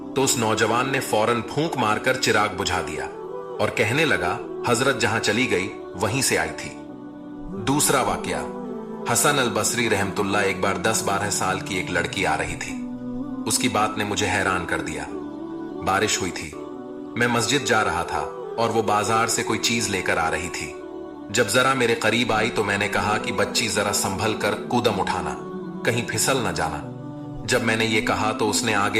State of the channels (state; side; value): identical; both; correlation 1.00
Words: तो उस नौजवान ने फौरन फूंक मारकर चिराग बुझा दिया और कहने लगा, हजरत जहां चली गई वहीं से आई थी। दूसरा वाकया, हसन अल बसरी रहमतुल्लाह एक बार 10-12 साल की एक लड़की आ रही थी। उसकी बात ने मुझे हैरान कर दिया। बारिश हुई थी, मैं मस्जिद जा रहा था और वो बाजार से कोई चीज लेकर आ रही थी। जब जरा मेरे करीब आई तो मैंने कहा कि बच्ची जरा संभल कर कूदम उठाना, कहीं फिसल न जाना। जब मैंने ये कहा तो उसने